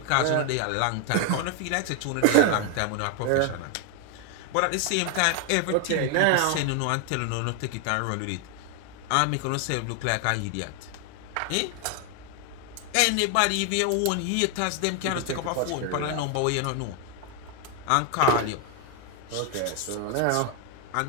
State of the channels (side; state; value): both; different; correlation 0.00